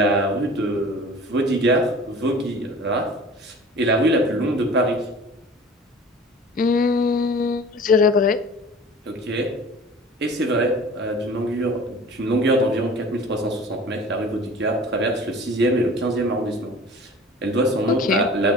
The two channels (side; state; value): both; normal; correlation 0.43